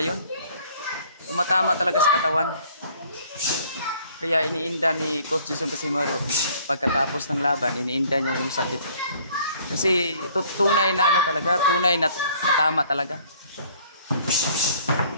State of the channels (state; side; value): inverted; both; correlation -0.57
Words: yun. Tumatama talaga sa katawan. Kaya iniinda ni Coach Jason Casimero pagkatapos ng laban, iniinda niya yung sakit. Kasi tunay na ano talaga, tunay na matama talaga.